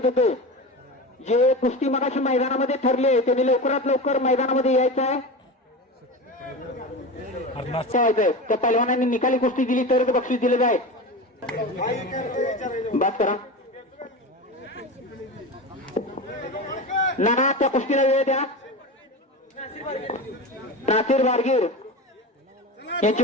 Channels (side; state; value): both; normal; correlation 0.26